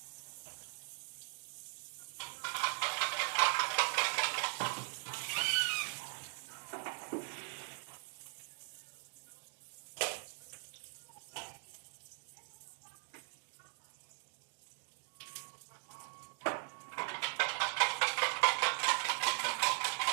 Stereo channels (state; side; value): silent; left; 51 dB below the other